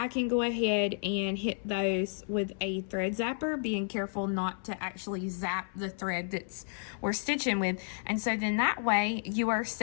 can go ahead and hit those with a thread zapper, being careful not to actually zap the thread that's we're stitching with. And so then that way you are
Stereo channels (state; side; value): silent; right; 57 dB below the other